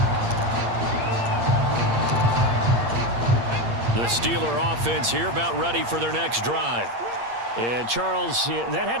The Steeler offense here about ready for their next drive. And Charles, that had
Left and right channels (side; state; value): left; late; 8.6 ms